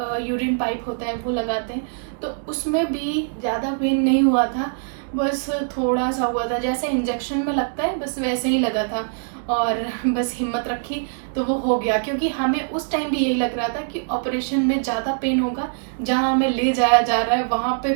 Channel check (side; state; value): left; silent; digital silence